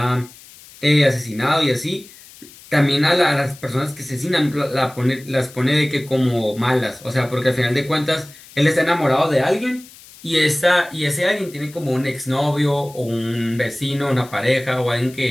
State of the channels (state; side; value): noise; left; hiss, 21 dB below the sound